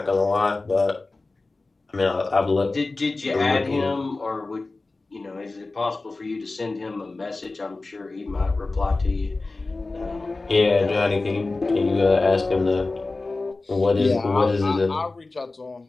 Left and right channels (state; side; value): quieter; right; 3.4 dB